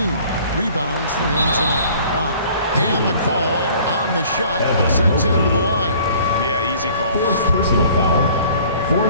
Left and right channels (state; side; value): inverted; both; correlation -0.52